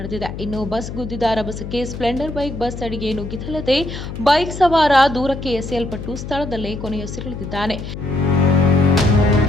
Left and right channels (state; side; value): noise; left; hum, 9 dB below the sound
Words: ಇನ್ನು ಬಸ್ ಗುದ್ದಿದ ರಭಸಕ್ಕೆ ಸ್ಪ್ಲೆಂಡರ್ ಬೈಕ್ ಬಸ್ ಅಡಿಗೆ ನುಗ್ಗಿದ್ದಲ್ಲದೆ ಬೈಕ್ ಸವಾರ ದೂರಕ್ಕೆ ಎಸೆಯಲ್ಪಟ್ಟು ಸ್ಥಳದಲ್ಲೇ ಕೊನೆಯುಸಿರೆಳೆದಿದ್ದಾನೆ.